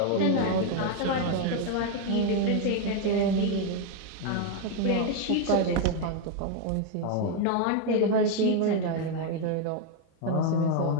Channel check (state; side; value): different; both; correlation 0.01